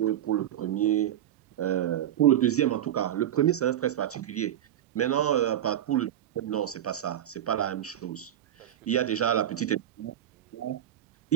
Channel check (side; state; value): left; quieter; 11.3 dB